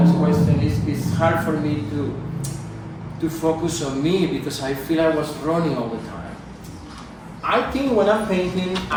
questions, it's hard for me to focus on me because I feel I was running all the time. I think when I'm painting,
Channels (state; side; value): identical; both; correlation 1.00